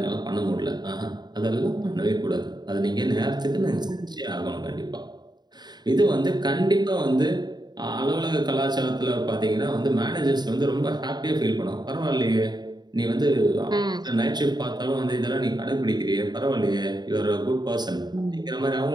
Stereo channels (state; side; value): late; left; 0.20 ms